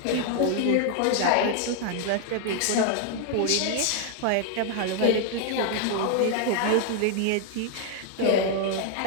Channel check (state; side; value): different; both; correlation 0.00